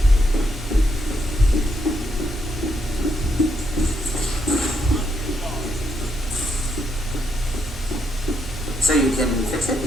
So you can fix it?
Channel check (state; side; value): normal; both; correlation 0.78